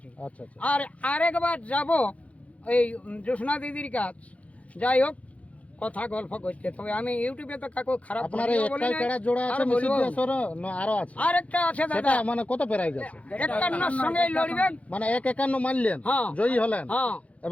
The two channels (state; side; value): late; right; 0.066 ms